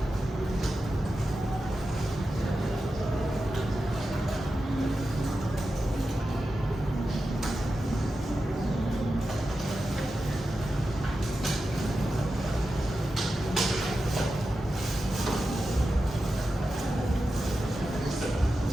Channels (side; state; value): both; normal; correlation 0.91